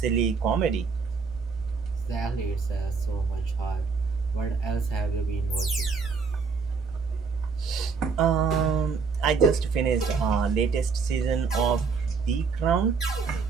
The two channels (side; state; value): left; quieter; 5.1 dB